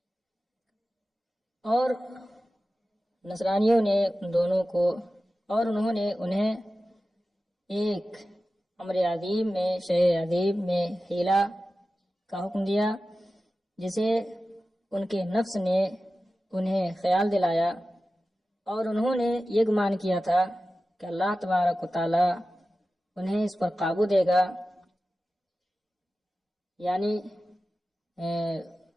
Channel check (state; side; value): normal; both; correlation 0.94